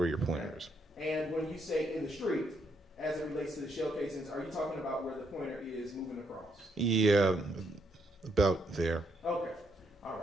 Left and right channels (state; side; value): normal; both; correlation 0.75